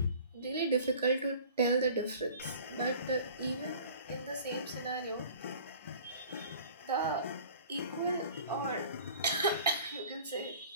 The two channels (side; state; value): both; inverted; correlation -0.46